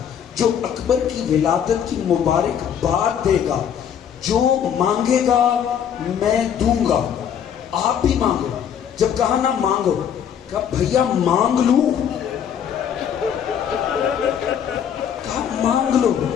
جو اکبر کی ولادت کی مبارکباد دے گا، جو مانگے گا میں دوں گا، آپ بھی مانگو۔ جب کہا نہ مانگو، کہا بھیا مانگ لوں؟ کہا مانگ لو۔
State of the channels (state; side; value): quieter; right; 8.6 dB